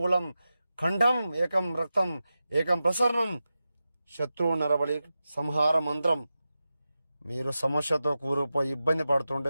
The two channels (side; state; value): both; inverted; correlation -0.92